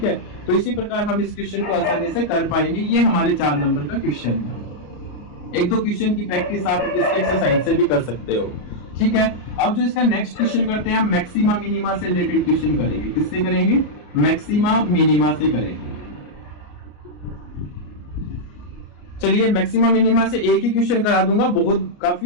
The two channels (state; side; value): late; right; 33 ms